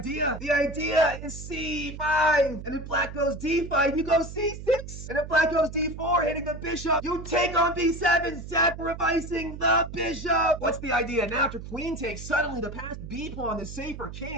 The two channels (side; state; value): right; noise; hum, 11 dB below the sound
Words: The idea is c5. And if black goes d5, you go c6. And if black goes d4, hitting the bishop, you take on b7, sacrificing the bishop. What's the idea? Now after queen takes, suddenly the passed b pawn is safe for